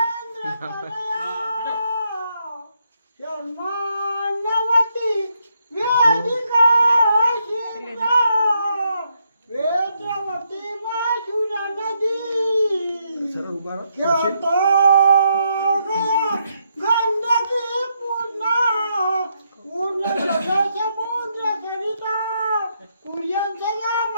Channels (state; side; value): inverted; both; correlation -0.78